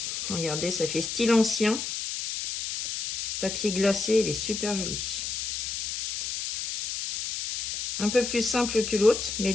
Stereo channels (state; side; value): noise; left; hiss, 4 dB below the sound